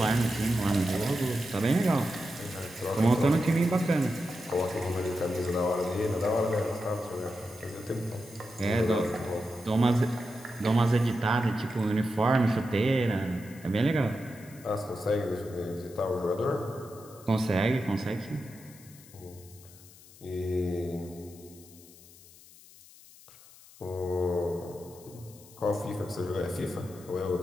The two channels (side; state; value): left; noise; hiss, 22 dB below the sound